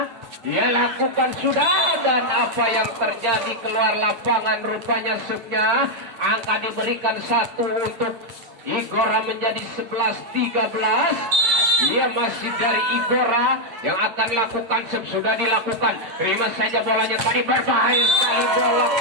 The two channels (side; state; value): left; late; 9.0 ms